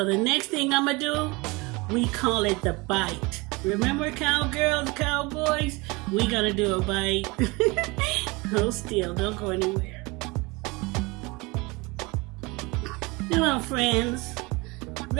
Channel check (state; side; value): quieter; left; 25.2 dB